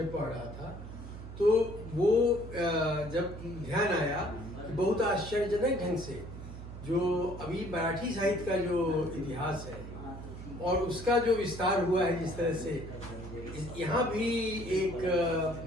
पढ़ रहा था, तो वो जब ध्यान आया कि बहुत आश्चर्यजनक ढंग से जो अभी मराठी साहित्य का जो इतिहास है और उसका जो विस्तार हुआ है, जिस तरह से यहाँ भी एक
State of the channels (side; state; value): right; noise; hum, 11 dB below the sound